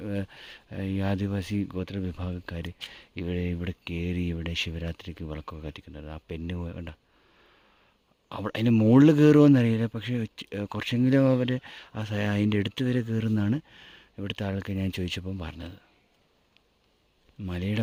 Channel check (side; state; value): both; identical; correlation 1.00